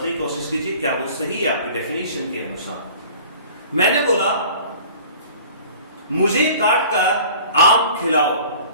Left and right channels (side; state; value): both; inverted; correlation -0.45